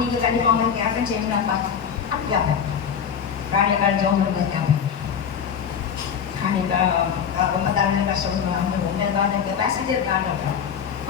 நீங்கள் கண்டிப்பாக உங்களுக்கு யாருக்கும் செய்யணும்னாப்பா அப்படி கேட்பேன். ராணியக்கால் ஜோம் பண்ணுறது கேட்பேன். ராணியக்கா ரொம்ப தலைமை கஷ்டப்படுவாங்க, அவங்க உங்களுக்காக கெப்பாசிட்டி இருக்கான்னு கேட்பேன்.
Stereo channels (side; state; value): right; quieter; 7.5 dB